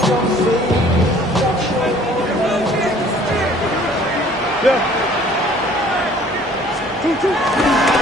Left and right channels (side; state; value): both; normal; correlation 0.54